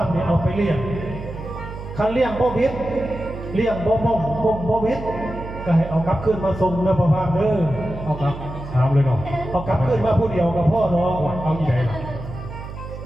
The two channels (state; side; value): noise; right; hum, 11 dB below the sound